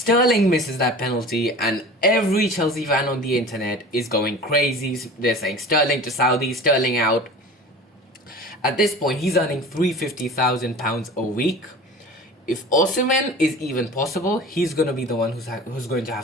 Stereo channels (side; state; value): both; normal; correlation 0.38